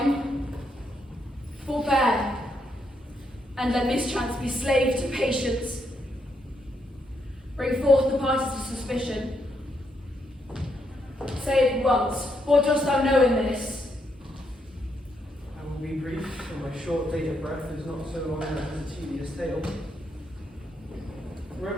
forbear, and let mischance be slave to patience. Bring forth the parties of suspicion. Say it once, what dost thou know in this? I will be brief, for my short date of breath is not so long as a tedious tale.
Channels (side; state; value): both; normal; correlation 0.78